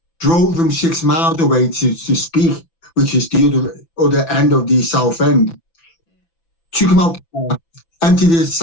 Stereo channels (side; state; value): right; late; 6.0 ms